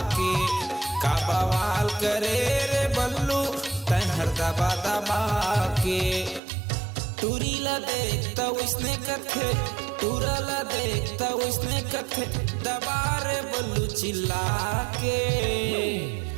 के, का बवाल करे रे बल्लू तहर दबा दबा के। टूरी ला देखता उसने कथे, टूरा ला देखता उसने कथे, दबा रे बल्लू चिल्ला के।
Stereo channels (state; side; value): drops out; left; at 6.4 s